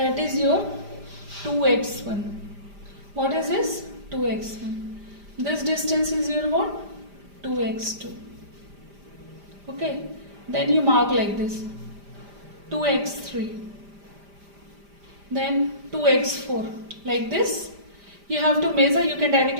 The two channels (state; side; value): late; left; 5.0 ms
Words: is your 2x1. What is this? 2x1. This distance is your what? 2x2. Okay, then you mark like this, 2x3, then 2x4, like this. You have to measure, you can